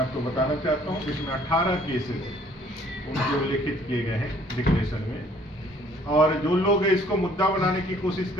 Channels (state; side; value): normal; both; correlation 0.59